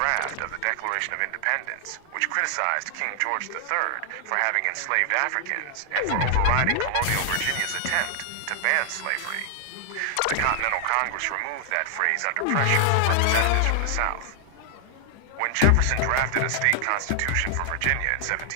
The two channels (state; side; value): different; both; correlation 0.00